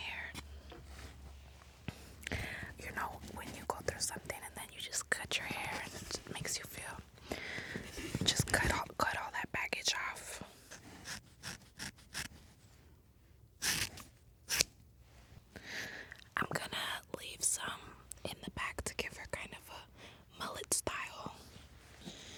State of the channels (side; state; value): both; identical; correlation 1.00